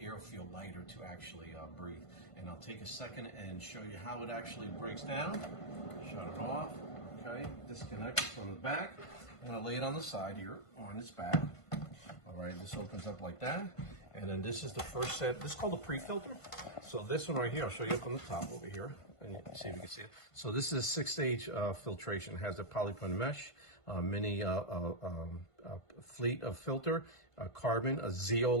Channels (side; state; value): right; late; 1.5 ms